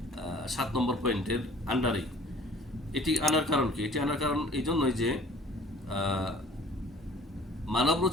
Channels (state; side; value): normal; both; correlation 0.51